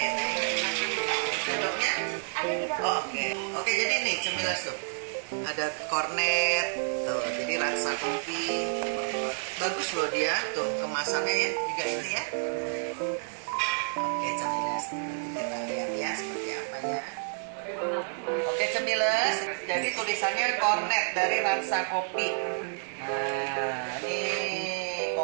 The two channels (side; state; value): left; silent; digital silence